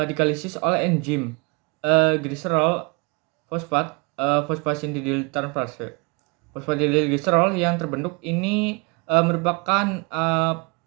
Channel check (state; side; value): quieter; left; 30.8 dB